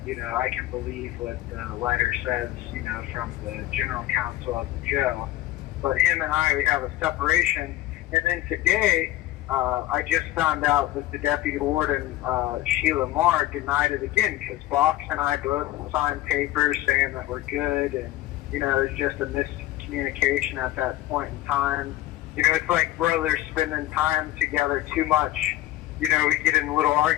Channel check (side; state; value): right; quieter; 15.1 dB